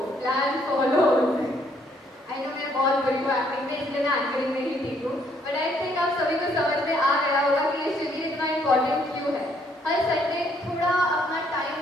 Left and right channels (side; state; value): both; normal; correlation 0.68